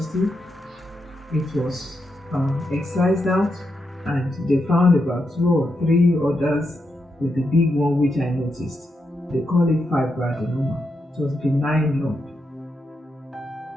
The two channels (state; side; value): normal; both; correlation 0.84